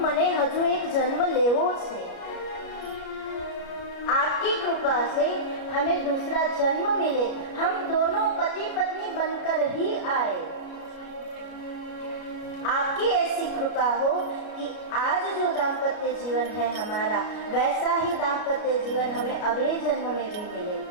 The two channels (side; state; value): right; late; 33 ms